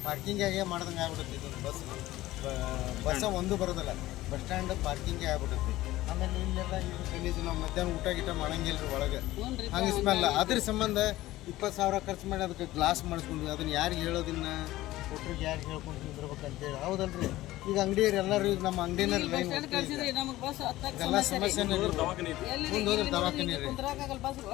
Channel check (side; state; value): right; quieter; 16.6 dB